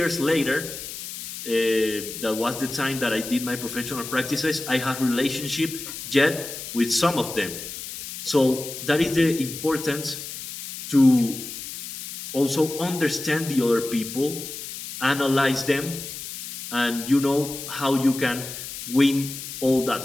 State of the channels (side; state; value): left; noise; hiss, 9 dB below the sound